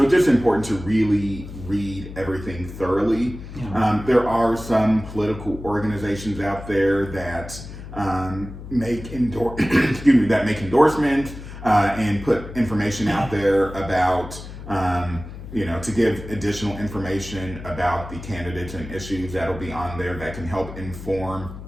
it's just important to really read everything thoroughly. Yeah. There are some political organizations out there that make endorsements and put information out there about to give additional information about the candidates and issues that'll be on there that can help inform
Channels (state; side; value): noise; left; hum, 12 dB below the sound